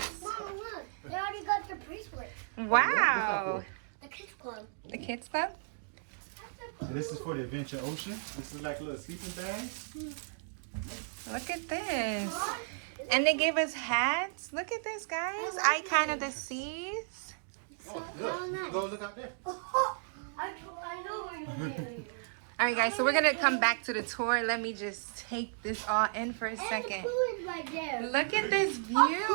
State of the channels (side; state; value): left; silent; digital silence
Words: Mom, look. They already got the bracelet. Wow. The kids club. The kids club? And this is for the Adventure Ocean. This is like a little sleeping bag. Look at this. And they gave us hats. Look at this, guys. Icon of the seas. Oh, look. Go look out there. I know where you're going. All right, guys, so we're going to come back to the tour. Let me just take this all in for a second. Pool is right there. Look at this view.